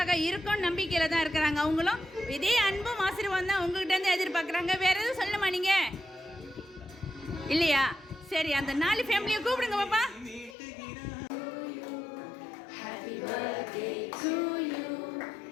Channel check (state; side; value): drops out; right; at 10.6 s